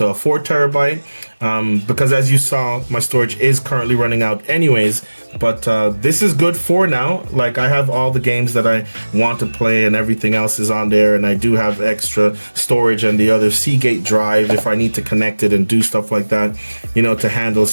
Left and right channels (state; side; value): inverted; both; correlation -1.00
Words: a 4 terabyte because, as you saw, my storage is currently running out anyways. But this is good for now. Like, I have all the games that I want to play and everything else is on there, and I do have extra storage and the other Seagate drive if I need to connect it and do stuff like that, you know, to handle